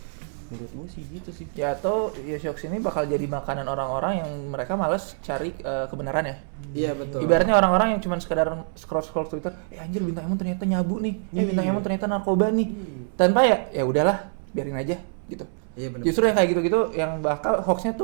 Menurut gua sih gitu sih. Ya atau ya hoax ini bakal jadi makanan orang-orang yang mereka malas cari kebenaran ya. Iya betul. Ibaratnya orang-orang yang cuma sekedar scroll Twitter, anjir bintang Emon ternyata nyabu nih. Bintang Emon ternyata narkoba nih. Tanpa ya udahlah, biarin aja gitu. Iya benar. Justru yang kayak gitu-gitu yang bakal hoaxnya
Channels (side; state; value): left; silent; 62 dB below the other